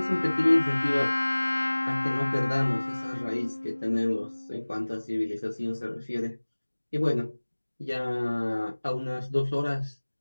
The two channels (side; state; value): both; inverted; correlation -1.00